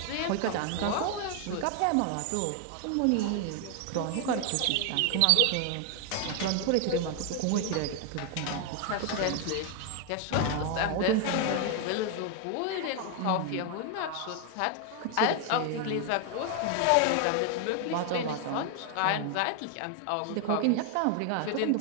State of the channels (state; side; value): different; both; correlation 0.01